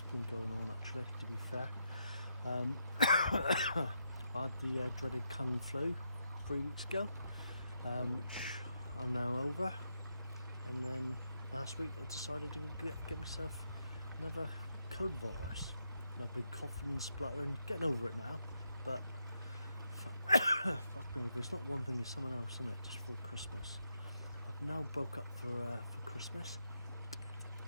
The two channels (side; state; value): both; inverted; correlation -0.81